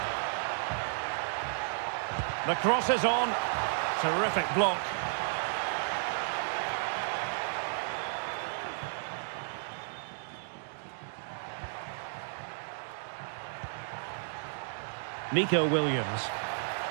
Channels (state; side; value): silent; left; digital silence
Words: The cross is on. Terrific block. Nico Williams.